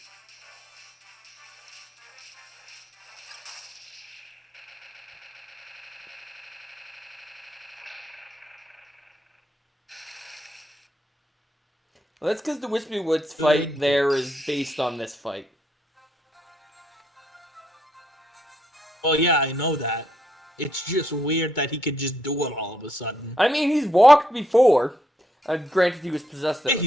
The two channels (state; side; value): normal; both; correlation 0.75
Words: Well, that's because the Wispy Woods fight there is based on this fight. Well, yeah, I know that. It's just weird that he could just do it all of a sudden. I mean, he's walked before. Granted, he was possessed at Yeah, the